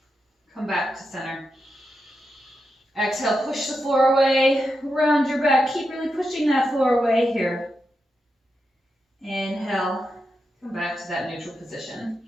come back to center. Exhale, push the floor away, round your back. Keep really pushing that floor away here. Inhale, come back to that neutral position.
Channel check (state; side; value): normal; both; correlation 0.87